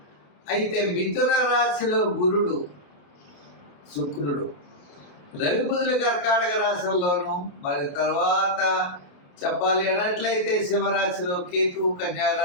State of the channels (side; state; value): right; late; 28 ms